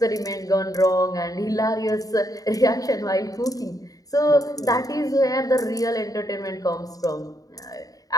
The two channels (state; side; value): late; right; 0.18 ms